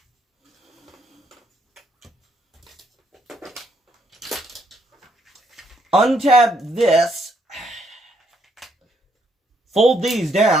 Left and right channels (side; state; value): both; normal; correlation 0.73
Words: Untab this, fold these